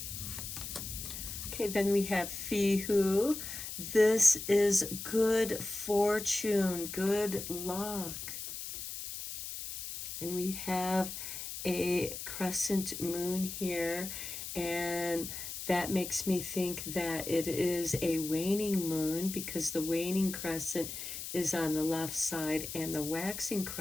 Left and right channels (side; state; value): left; noise; hiss, 7 dB below the sound